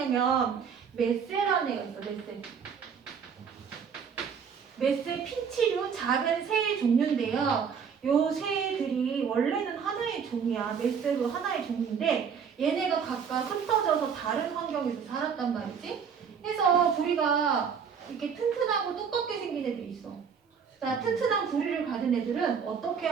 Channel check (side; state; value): left; quieter; 6.8 dB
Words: 메세라는 애가 있어. 메세. 메세 핀치류 작은 새의 종류인데요. 요 새들이 원래는 하나의 종이야. 메세도 하나의 종인데 얘네가 각각 흩어져서 다른 환경에서 살았단 말이지. 그래서 부리가 이렇게 튼튼하고 두껍게 생긴 애들이 있어. 자, 튼튼한 부리를 가진 애들은 어떻게